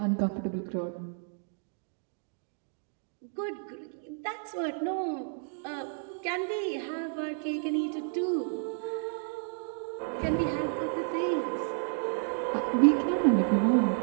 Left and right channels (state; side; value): silent; left; 57 dB below the other